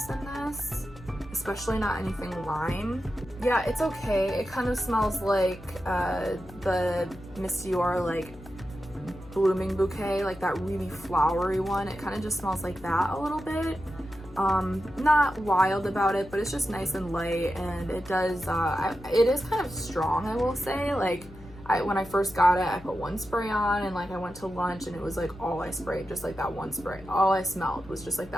in this, especially not anything lime. Yeah, it's okay. It kind of smells like the Monsieur Dior like blooming bouquet, like that really flowery one. It kind of just smells like that a little bit. Not wild about it, but it's just nice and light, and it does it is kind of strong, I will say. Like, when I first got it, I put one spray on, and like I went to lunch and it was like all I sprayed, just like that one spray. All I smelled was just like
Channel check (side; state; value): left; noise; hum, 19 dB below the sound